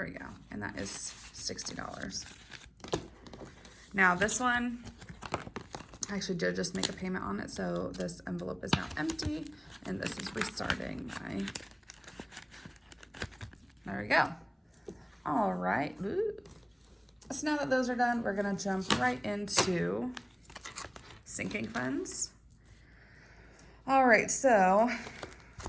we go. And that is $60. Now this one, I actually did just make a payment on it, so this envelope is now empty, and this is restarting my, there we go. All right. Ooh. So now that those are done, we're gonna jump right into sinking funds. All right, so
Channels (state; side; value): identical; both; correlation 1.00